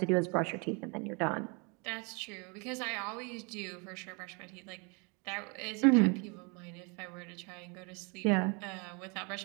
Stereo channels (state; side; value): quieter; left; 32.1 dB